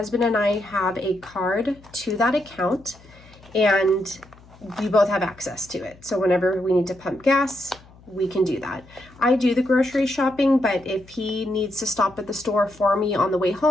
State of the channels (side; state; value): left; noise; hum, 25 dB below the sound